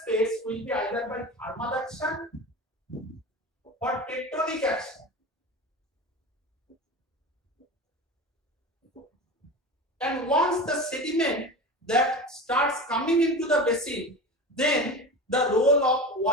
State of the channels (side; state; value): both; normal; correlation 0.30